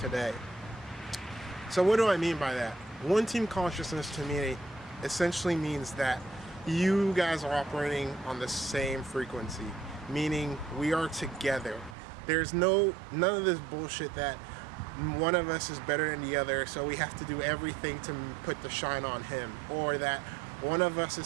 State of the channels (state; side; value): drops out; left; at 12.0 s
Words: So what do I mean by that? One team consciousness to me essentially means that you guys are operating on the same frequency, meaning we are together. There's none of this bullshit that one of us is better than the other, so we have to do everything to put the shine on him, or that one of us